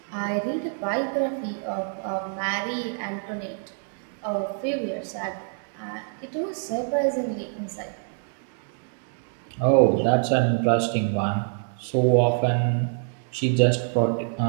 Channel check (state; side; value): silent; left; digital silence